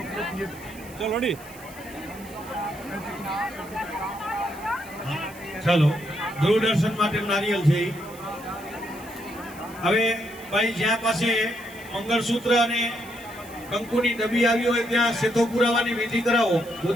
ચાલો દૂરદર્શન માટે નારિયેલ છે ઈ. હવે ભાઈ જ્યાં પાસે મંગળસૂત્ર અને કંકુની ડબ્બી આવી હોય ત્યાં શેથો પુરાવાની વિધિ કરાવો.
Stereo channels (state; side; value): noise; right; hiss, 20 dB below the sound